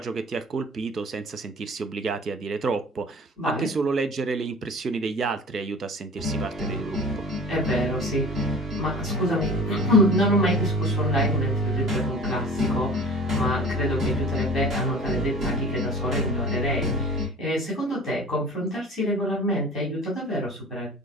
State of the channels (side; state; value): both; normal; correlation 0.41